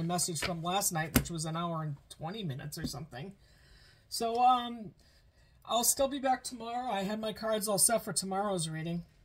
message from last night, which was an hour and 20 minutes or something. So, I'll still be back tomorrow. I had my cards all set for tomorrow's reading,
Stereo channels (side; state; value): both; identical; correlation 1.00